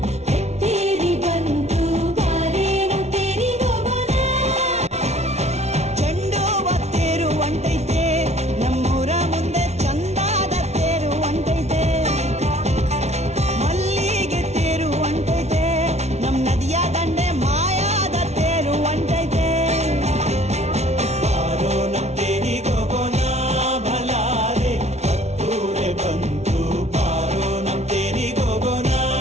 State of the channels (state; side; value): late; left; 0.32 ms